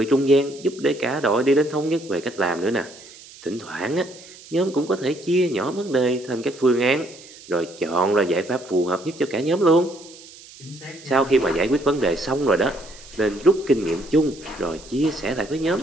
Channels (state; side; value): noise; right; hiss, 20 dB below the sound